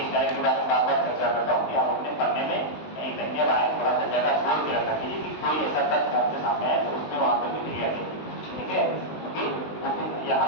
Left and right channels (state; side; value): late; right; 19 ms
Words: स्लाइड के बारे में बार बार चर्चा करता हूँ कि आप अपने पढ़ने में कहीं कहीं आए थोड़ा सा जगह छोड़ के रखा कीजिए कि कोई ऐसा तथ्य आपके सामने आए तो उसमें वहां पर लिख लिया कीजिए, ठीक है। क्योंकि यहाँ